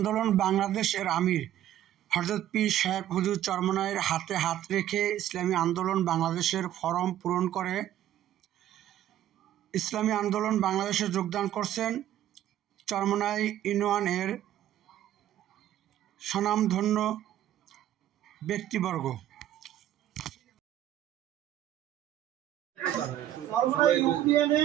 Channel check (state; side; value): quieter; left; 12.1 dB